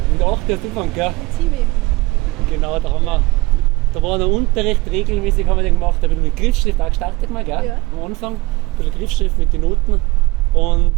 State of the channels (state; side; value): quieter; left; 21.9 dB